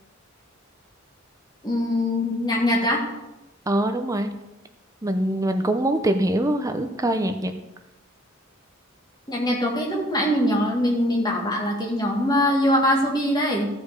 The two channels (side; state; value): both; normal; correlation 0.59